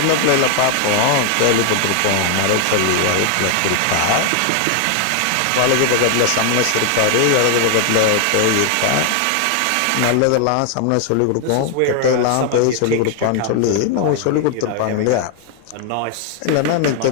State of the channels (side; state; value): both; different; correlation 0.00